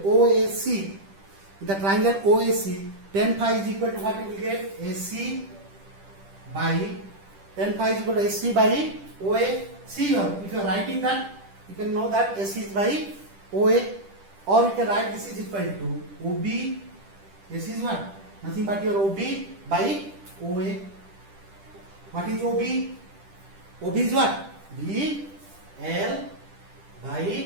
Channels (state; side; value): late; left; 10 ms